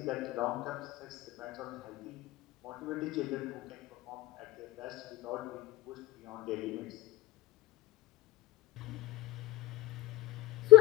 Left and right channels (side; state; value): right; quieter; 17.1 dB